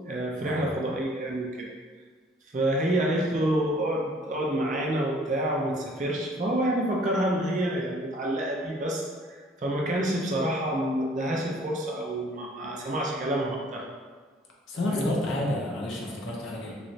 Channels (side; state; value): both; normal; correlation 0.57